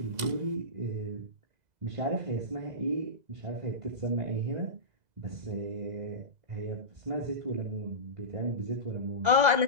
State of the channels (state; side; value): late; left; 2.0 ms